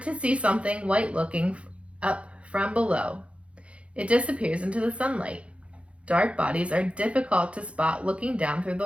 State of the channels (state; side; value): late; left; 0.061 ms